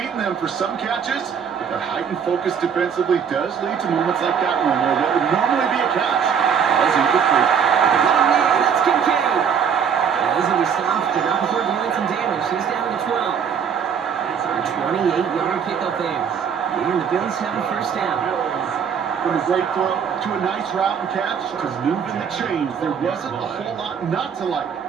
them for some catches, but that heightened focus defensively does lead to moments like that one where what would normally be a catch falls incomplete. Oh, man, that's Kincaid. Easily stopped, but not before doing some damage. He's down to 12. A 28-yard pickup there. And the Bills have a first down. From a great throw to a nice route and catch to moving the chains, there wasn't a whole lot not to like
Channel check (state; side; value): quieter; left; 7.3 dB